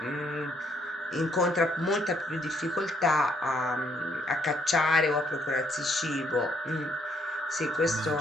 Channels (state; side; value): normal; both; correlation 0.70